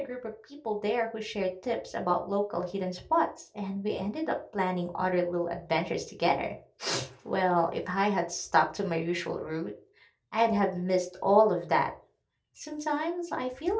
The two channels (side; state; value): both; identical; correlation 1.00